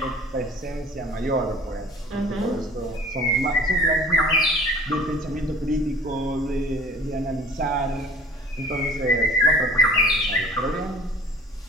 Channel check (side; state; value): both; normal; correlation 0.45